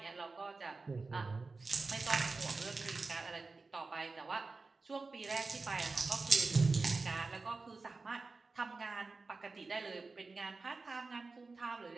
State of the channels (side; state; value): left; quieter; 3.9 dB